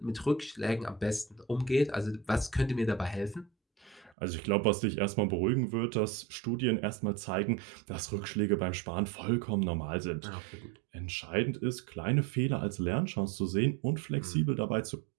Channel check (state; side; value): drops out; left; at 4.2 s